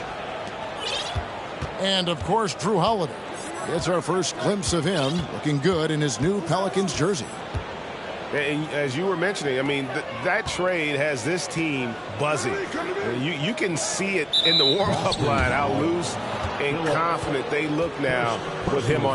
And, of course, Drew Holiday. It's our first glimpse of him looking good in his new Pelicans jersey. And as you were mentioning, I mean, that trade has this team buzzing. You can see it in the warm-up line, how loose and confident they look now with him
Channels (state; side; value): identical; both; correlation 1.00